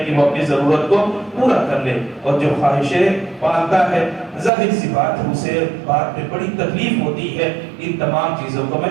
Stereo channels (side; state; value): left; drops out; at 4.5 s